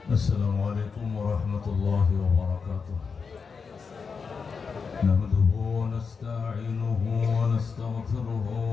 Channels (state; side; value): quieter; right; 5.4 dB